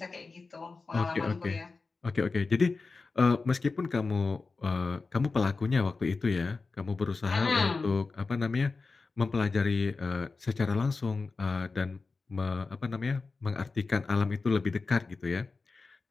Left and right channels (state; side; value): quieter; right; 4.1 dB